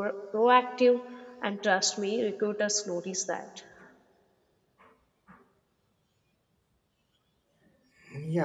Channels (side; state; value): both; identical; correlation 1.00